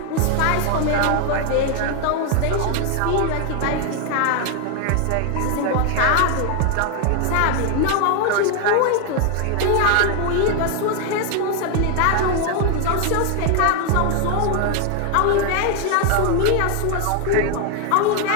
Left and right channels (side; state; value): both; different; correlation 0.01